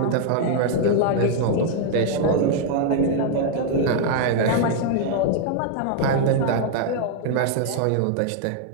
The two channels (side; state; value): both; different; correlation 0.00